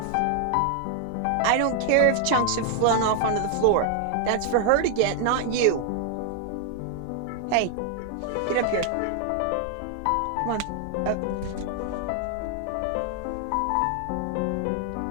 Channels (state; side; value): different; both; correlation 0.00